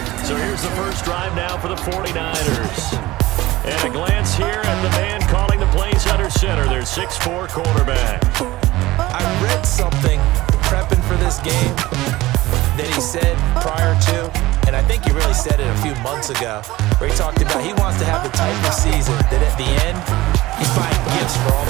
So here's the first drive now for the 49ers. And a glance here at the man calling the plays under center. Their 6'4" quarterback. I read something prepping for this game that he said prior to, and I think he really said it a few months ago, where he talked about he wants to have the type of season that at the end, he's buying gifts for all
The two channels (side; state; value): left; quieter; 18.2 dB